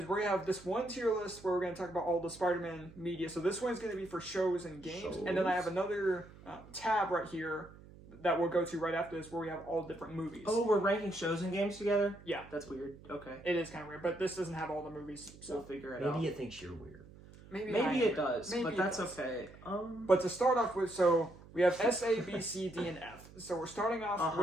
we have this one tier list where we're going to talk about all the Spider-Man media. So this one's going to be for shows and games. And then I have another tab right here that we'll go to right after this where we have all different movies. Oh, we're ranking shows and games together? Yeah. That's weird. Okay. It is kind of weird, but this doesn't have all the movies. So we'll figure it out. Maybe it thinks you're weird. Maybe it does, Maybe but that's okay. But to start off with, so we have S, A, B, C, D, and F. So we're starting off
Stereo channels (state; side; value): noise; right; hum, 20 dB below the sound